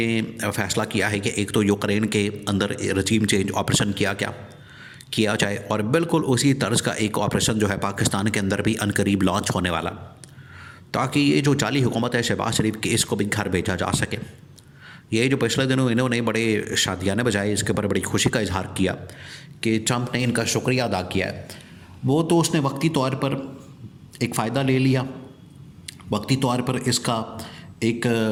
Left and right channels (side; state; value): both; identical; correlation 1.00